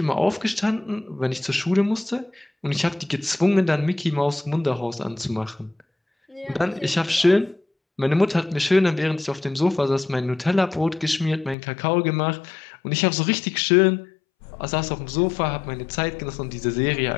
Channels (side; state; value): right; drops out; at 11.6 s